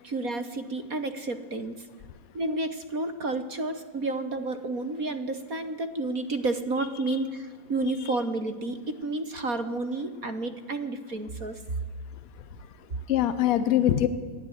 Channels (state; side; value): late; left; 4.2 ms